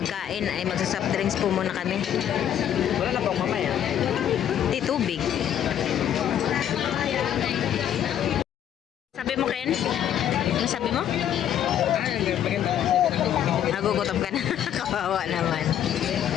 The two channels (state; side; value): quieter; right; 10.2 dB